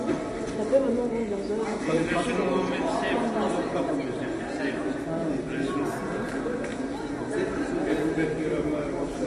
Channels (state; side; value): identical; both; correlation 1.00